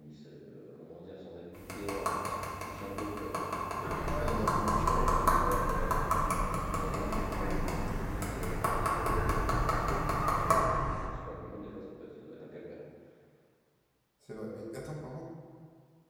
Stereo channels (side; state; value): both; identical; correlation 1.00